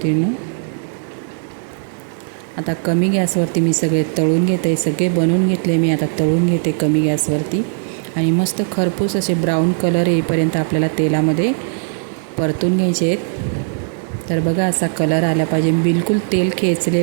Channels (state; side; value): silent; left; 67 dB below the other